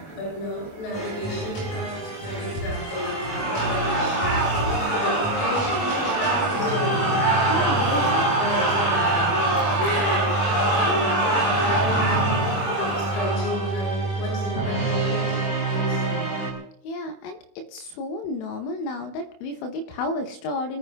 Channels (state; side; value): late; right; 25 ms